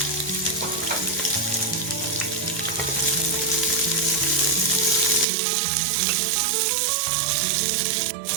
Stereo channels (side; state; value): left; drops out; at 5.2 s